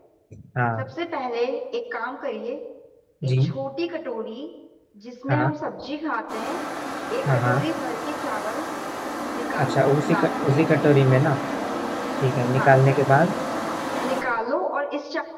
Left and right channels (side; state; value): both; identical; correlation 1.00